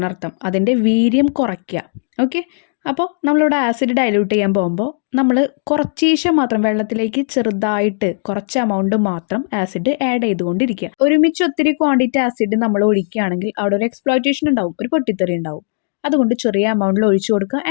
അർത്ഥം. അതിൻ്റെ വീര്യം കുറയ്ക്കുക. ഓക്കെ, അപ്പോൾ നമ്മളിവിടെ ആസിഡ് ഡൈല്യൂട്ട് ചെയ്യാൻ പോകുമ്പോൾ നമ്മൾ കുറച്ചീശം മാത്രം വെള്ളത്തിലേക്ക് ചെറുതായിട്ട് കുറച്ച് എമൗണ്ട് മാത്രം ആസിഡ് ആഡ് ചെയ്തുകൊണ്ടിരിക്കുക. ഒരുമിച്ച് ഒത്തിരി ക്വാണ്ടിറ്റി ആസിഡ് നമ്മൾ ഒഴിക്കുകയാണെങ്കിൽ അവിടെ ഒരു എക്സ്പ്ലോയിറ്റേഷൻ ഉണ്ടാവും, ഒരു പൊട്ടിത്തെറി ഉണ്ടാവും. അതുകൊണ്ട് ചെറിയ എമൗണ്ടിൽ ഒഴിച്ചു കൊടുക്കുക.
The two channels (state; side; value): silent; right; digital silence